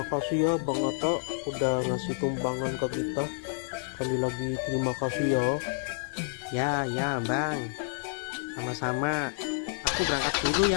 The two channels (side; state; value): right; silent; digital silence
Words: ya Bang Atta udah ngasih tumpangan ke kita. Sekali lagi terima kasih ya. Ya Bang. Sama-sama. Aku berangkat dulu